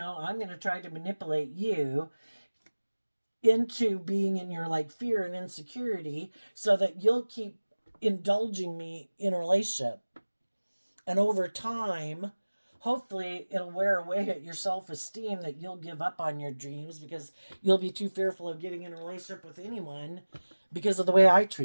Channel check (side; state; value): both; inverted; correlation -1.00